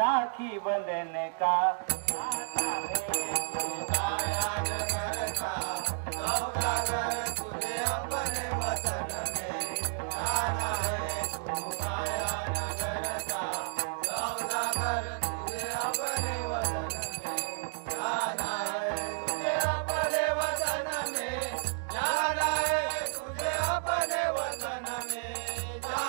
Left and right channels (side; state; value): left; silent; digital silence